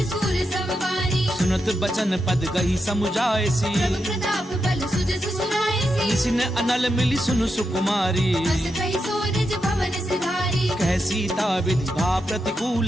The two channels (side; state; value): both; normal; correlation 0.85